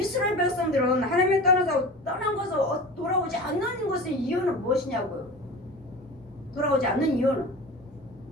백성들은 하나님이 떠난 것을 돌아오지 않는 것의 이유는 무엇이냐고요. 돌아오지 않는 이유는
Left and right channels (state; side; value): normal; both; correlation 0.34